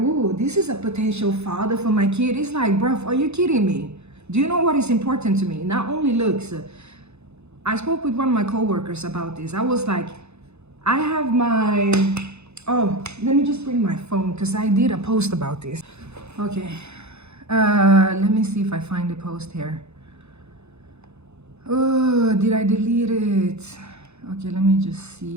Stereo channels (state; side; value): late; left; 0.81 ms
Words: this is a potential father for my kid. It's like, bruv, are you kidding me? Do you know what is important to me? Not only looks. I spoke with one of my coworkers about this. I was like, I have my, oh, let me just bring my phone because I did a post about this. Okay, let me see if I find the post here. Oh, did I delete it? Okay, let me just